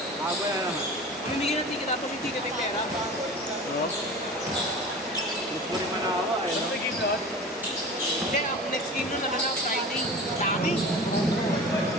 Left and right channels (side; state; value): both; normal; correlation 0.36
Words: Aba yan naman. Mamimigay ng ticket, tapos yung ticket ay pera. Puri manawa eh. Ano game doon? Hindi, ang next game nun na Friday. Dami.